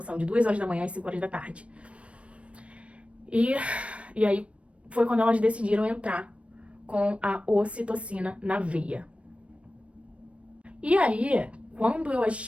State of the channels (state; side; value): late; left; 0.062 ms